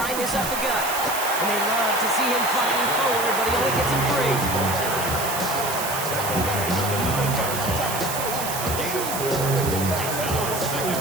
this up the gut. And they love to see him fighting forward, but he only gets him free.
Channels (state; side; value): noise; right; hiss, 5 dB below the sound